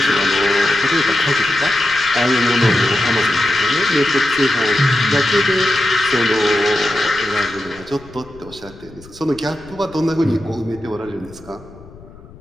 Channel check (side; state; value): left; noise; rumble, 21 dB below the sound